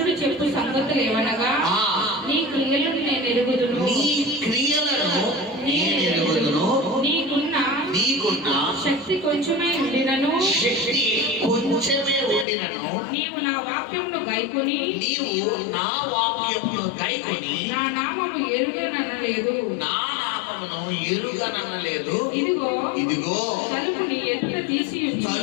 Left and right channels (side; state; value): right; drops out; at 12.5 s